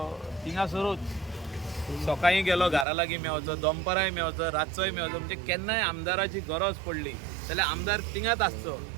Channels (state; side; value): drops out; left; at 2.9 s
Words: थिंगासरूच सकाळीं गेलो घरा लागीं मेवचो, दनपाराय मेवचो, रातचोय मेवचो. म्हणजे केन्नाय आमदाराची गरज पडली जाल्यार आमदार थिंगाच आसचो